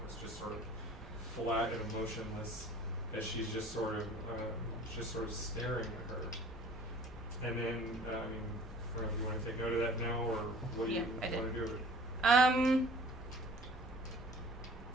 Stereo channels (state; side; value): normal; both; correlation 0.48